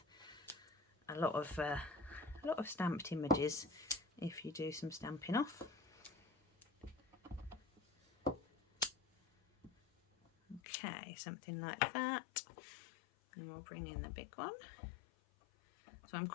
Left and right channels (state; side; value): drops out; right; at 10.6 s